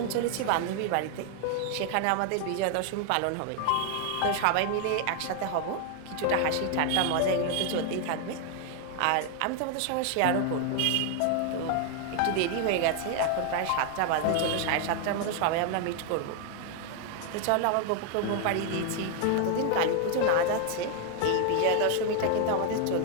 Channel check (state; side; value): different; both; correlation 0.01